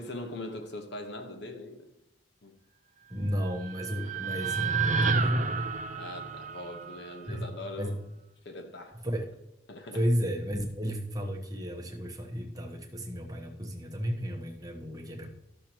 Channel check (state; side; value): normal; both; correlation 0.59